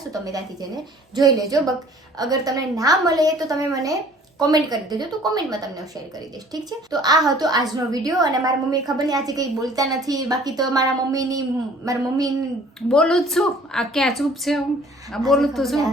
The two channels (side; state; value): both; normal; correlation 0.52